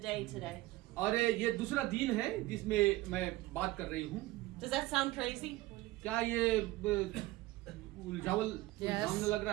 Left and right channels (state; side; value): quieter; left; 18.7 dB